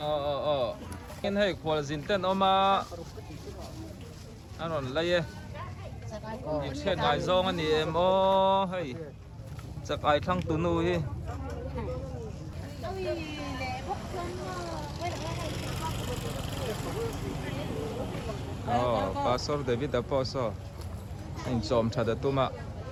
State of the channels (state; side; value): identical; both; correlation 1.00